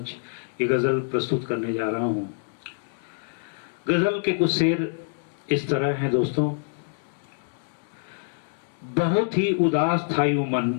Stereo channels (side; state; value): right; silent; digital silence